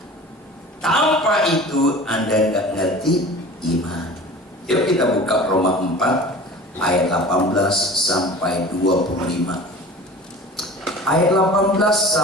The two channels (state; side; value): normal; both; correlation 0.39